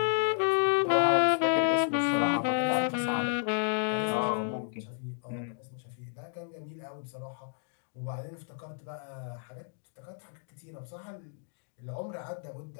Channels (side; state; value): right; silent; digital silence